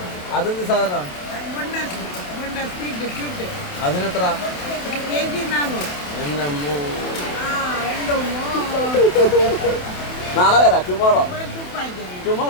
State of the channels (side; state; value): right; late; 27 ms